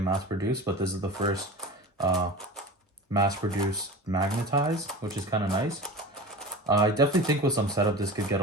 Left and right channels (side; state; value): both; normal; correlation 0.33